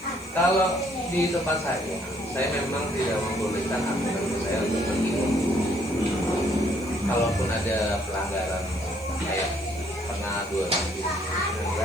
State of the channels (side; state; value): right; noise; hiss, 23 dB below the sound